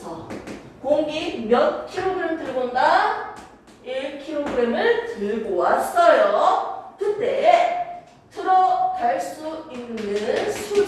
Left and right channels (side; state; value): both; identical; correlation 1.00